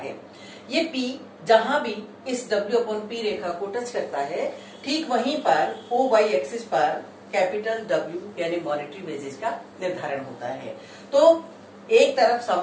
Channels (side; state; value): both; identical; correlation 1.00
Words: ये P जहां भी इस W अपॉन P रेखा को टच करता है, ठीक वहीं पर OY एक्सिस पर कैपिटल W यानी मॉनेटरी वेजेस का निर्धारण होता है। तो एक तरफ